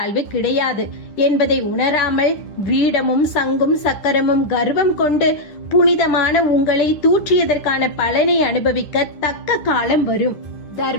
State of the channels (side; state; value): right; late; 10 ms